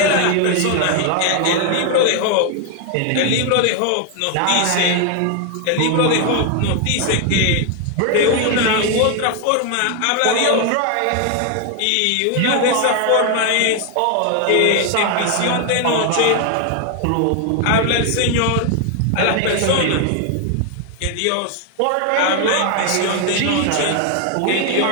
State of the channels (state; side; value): different; both; correlation 0.01